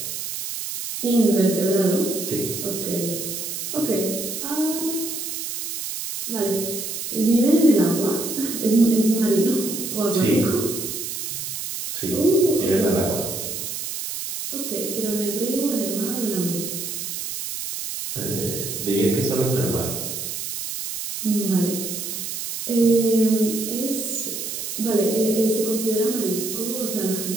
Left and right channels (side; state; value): right; noise; hiss, 5 dB below the sound